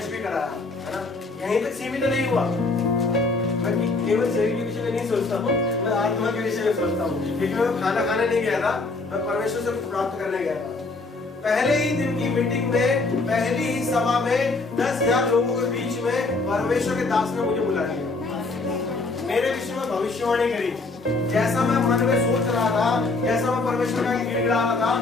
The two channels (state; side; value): quieter; right; 3.5 dB